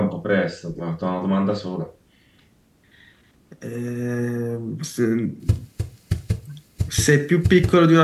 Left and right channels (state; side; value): identical; both; correlation 1.00